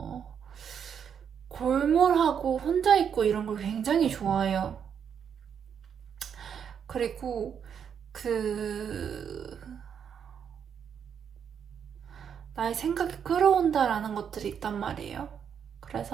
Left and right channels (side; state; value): left; quieter; 7.8 dB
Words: 골몰하고 혼자 있고 이런 걸 굉장히 좋아해요. 그리고 나의 생각이 끌어온다라는 것들이 있단 말이에요.